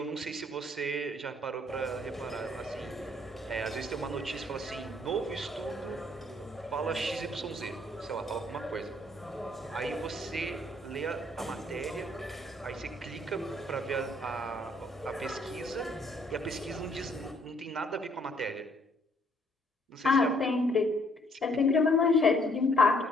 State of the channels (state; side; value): normal; both; correlation 0.66